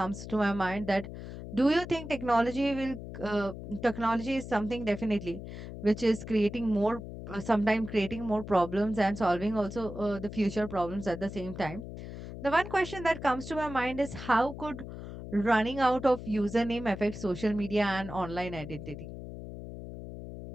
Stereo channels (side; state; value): left; noise; hum, 10 dB below the sound